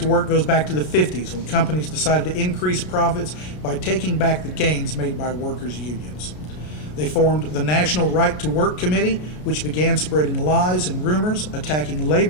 work goes back to the 50s when companies decided to increase profits by taking back the gains made by workers' unions. They formed the National Right to Work Committee, which began spreading lies and rumors, attacking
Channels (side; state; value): right; late; 33 ms